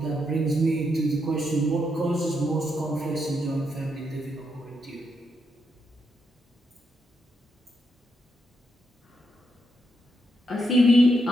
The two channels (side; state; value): both; normal; correlation 0.81